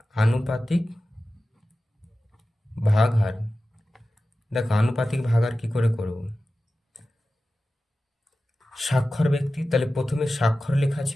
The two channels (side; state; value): both; normal; correlation 0.94